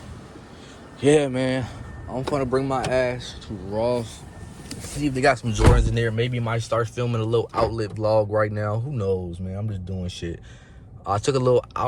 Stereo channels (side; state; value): both; identical; correlation 1.00